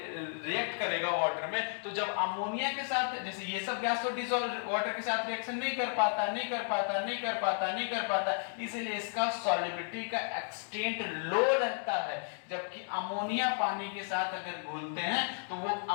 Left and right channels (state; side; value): silent; right; 56 dB below the other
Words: करेगा वाटर में, तो जब अमोनिया के साथ, जैसे ये सब गैस तो डिसॉल्व वाटर के साथ रिएक्शन नहीं कर पाता, इसीलिए इसका सॉल्युबिलिटी का एक्सटेंट लो रहता है। जबकि अमोनिया पानी के साथ अगर घुलते हैं तो वो